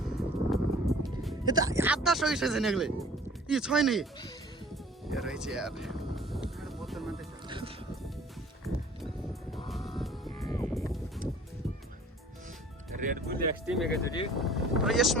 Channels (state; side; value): normal; both; correlation 0.50